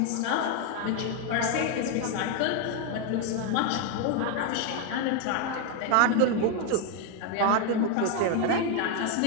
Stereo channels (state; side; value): different; both; correlation 0.01